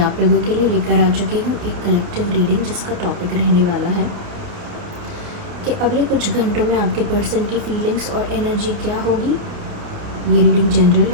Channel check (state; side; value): late; left; 29 ms